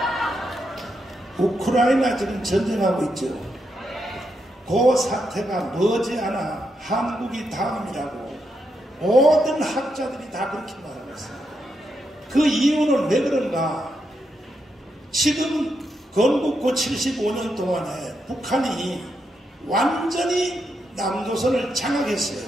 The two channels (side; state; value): both; normal; correlation 0.82